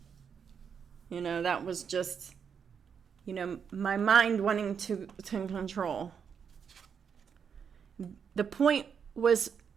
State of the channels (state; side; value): quieter; left; 7.0 dB